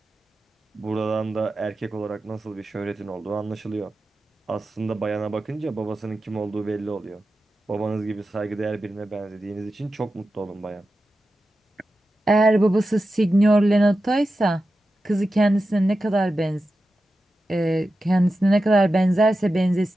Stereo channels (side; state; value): both; normal; correlation 0.92